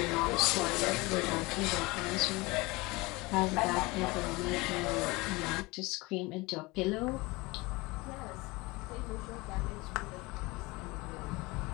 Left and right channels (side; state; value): right; quieter; 23.4 dB